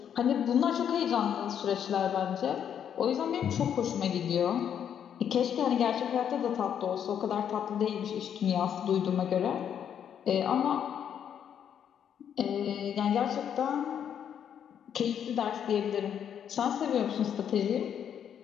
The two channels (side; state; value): right; quieter; 8.8 dB